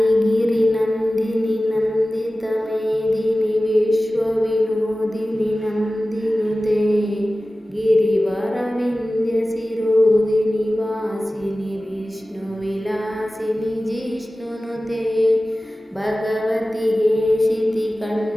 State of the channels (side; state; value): both; normal; correlation 0.96